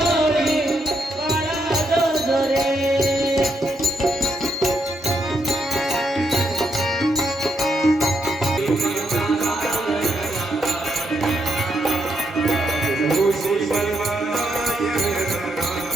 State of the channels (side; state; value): both; normal; correlation 0.78